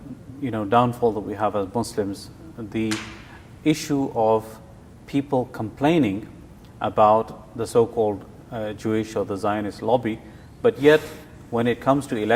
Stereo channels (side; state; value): both; identical; correlation 1.00